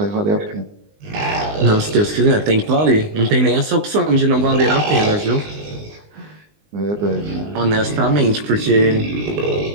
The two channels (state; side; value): late; left; 19 ms